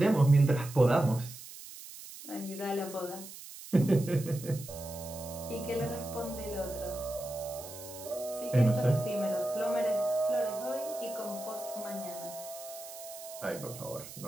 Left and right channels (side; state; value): right; noise; hiss, 14 dB below the sound